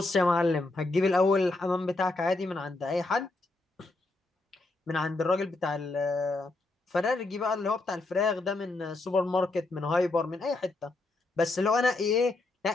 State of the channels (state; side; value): quieter; right; 3.1 dB